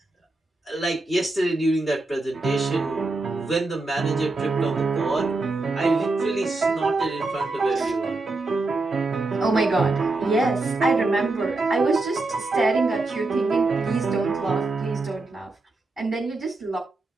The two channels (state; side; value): quieter; left; 3.2 dB